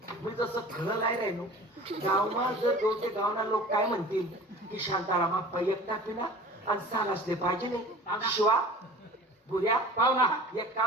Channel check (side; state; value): both; normal; correlation 0.41